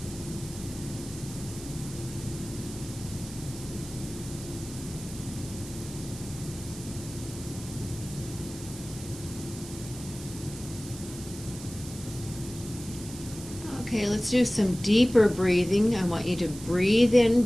Okay, let's do some deeper breathing. I want you to breathe in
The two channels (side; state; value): right; noise; hiss, 14 dB below the sound